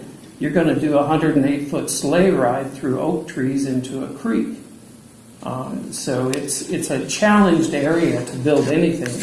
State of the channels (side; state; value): both; identical; correlation 1.00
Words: you're going to do a 108-foot sleigh ride through oak trees into a creek. So it's a challenged area to build anything